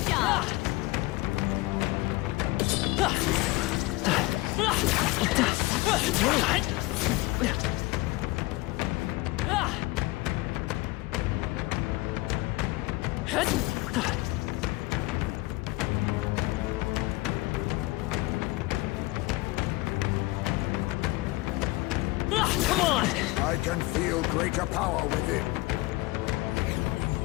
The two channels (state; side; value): quieter; right; 21.1 dB